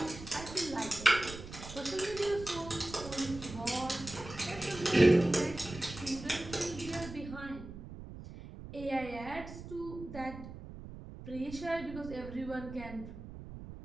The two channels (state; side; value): noise; right; rumble, 12 dB below the sound